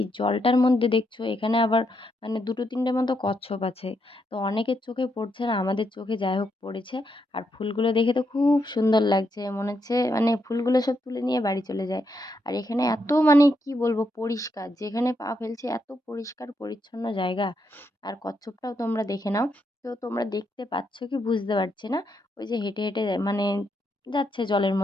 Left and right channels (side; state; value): both; normal; correlation 0.80